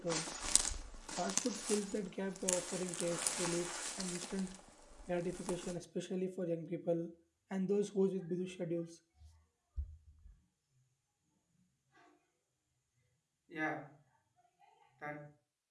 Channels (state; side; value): identical; both; correlation 1.00